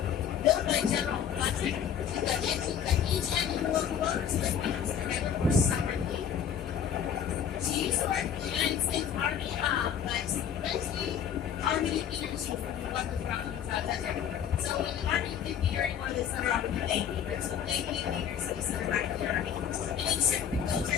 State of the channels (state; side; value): quieter; right; 8.6 dB